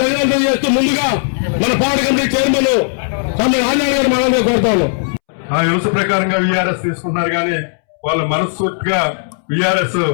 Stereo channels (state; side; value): silent; right; 69 dB below the other